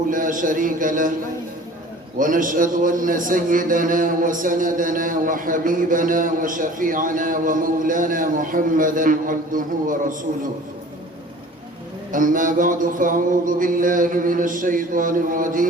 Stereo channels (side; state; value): both; normal; correlation 0.46